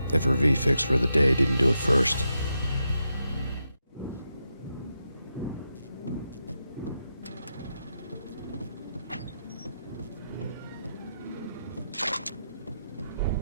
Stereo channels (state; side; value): inverted; both; correlation -0.85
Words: if her V-fix for the day didn't do it first.